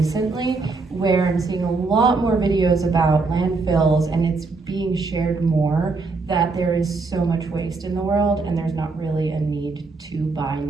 where I'm seeing a lot more videos about landfills, and it's being shared more that there is so much waste in the world and there's not really a need to buy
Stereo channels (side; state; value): left; quieter; 4.0 dB